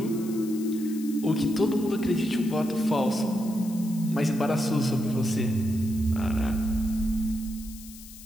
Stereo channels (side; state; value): left; noise; hiss, 17 dB below the sound